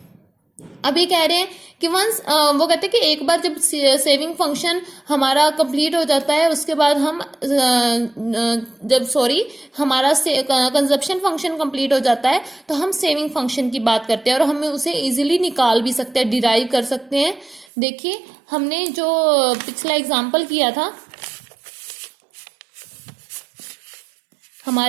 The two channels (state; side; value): drops out; left; at 17.7 s